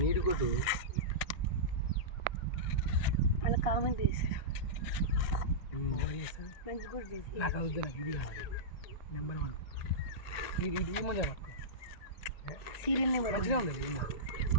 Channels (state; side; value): late; right; 1.9 ms